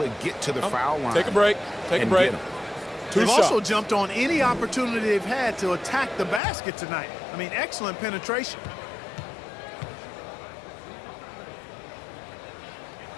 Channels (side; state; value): right; drops out; at 6.4 s